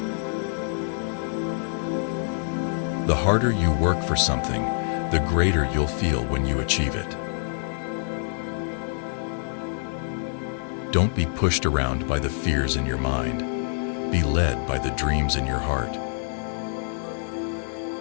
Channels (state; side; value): silent; right; digital silence